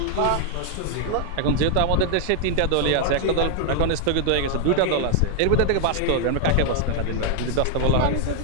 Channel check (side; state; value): both; different; correlation 0.00